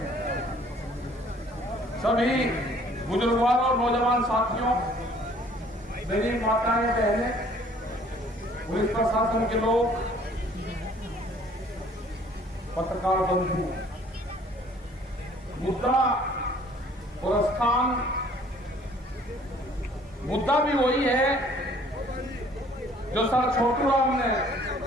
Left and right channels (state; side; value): normal; both; correlation 0.57